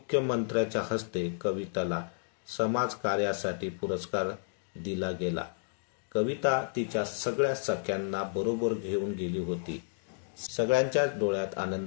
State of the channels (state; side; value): silent; right; digital silence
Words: हस्ते कविताला समाज कार्यासाठी पुरस्कार दिला गेला. कविता तिच्या सगळ्या सख्यांना बरोबर घेऊन गेली होती. सगळ्यांच्या डोळ्यात